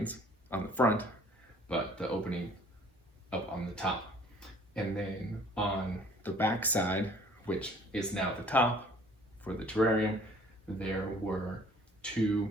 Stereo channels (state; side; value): normal; both; correlation 0.54